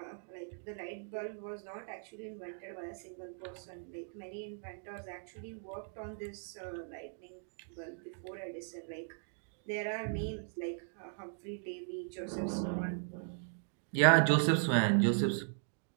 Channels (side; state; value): left; silent; digital silence